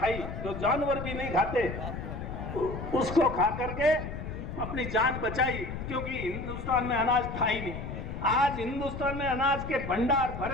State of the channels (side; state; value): left; noise; rumble, 7 dB below the sound